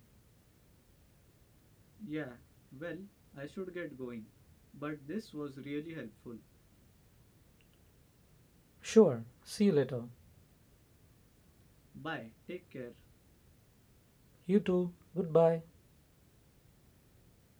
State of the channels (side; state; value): both; identical; correlation 1.00